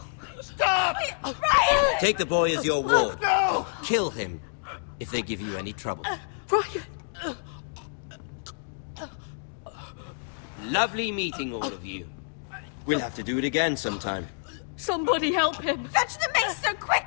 Stop! Ryan! Take the boy as your ward. No! Kill him if they give you any trouble. Ryan! Lovely meeting all of you. We'll have to do it again sometime. Somebody help him! Fetch the maester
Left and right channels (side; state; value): right; silent; digital silence